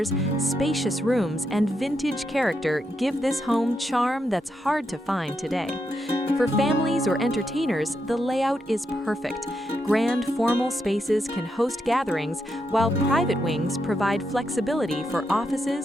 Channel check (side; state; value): both; normal; correlation 0.83